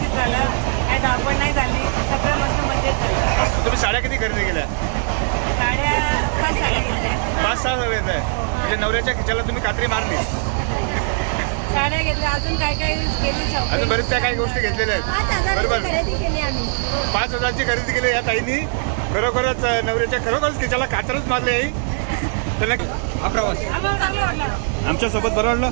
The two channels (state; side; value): silent; left; 65 dB below the other